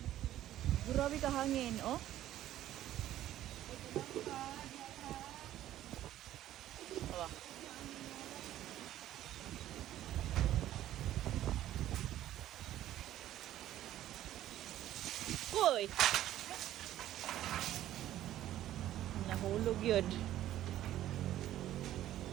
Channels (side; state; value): left; quieter; 13.1 dB